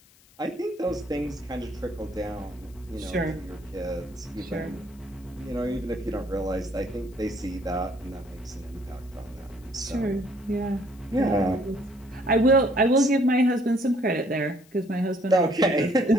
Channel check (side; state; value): left; noise; hiss, 28 dB below the sound